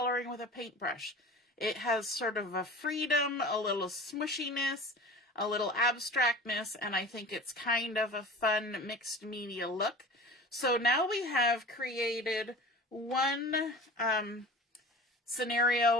with a paintbrush. It has sort of a freedom, a little smushiness, a little abstractness, and I think it's kind of a fun mixed media look. So now we have created one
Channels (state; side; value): normal; both; correlation 0.39